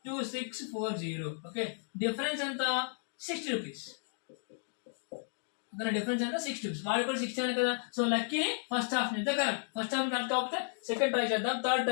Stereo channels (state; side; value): silent; right; 55 dB below the other